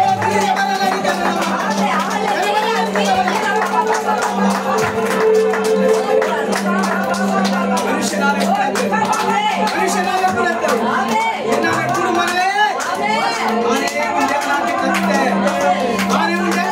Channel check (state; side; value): identical; both; correlation 1.00